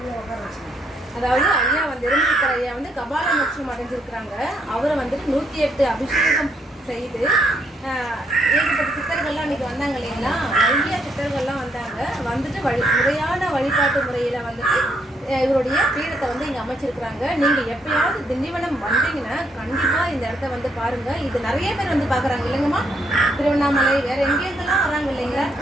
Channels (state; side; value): normal; both; correlation 0.72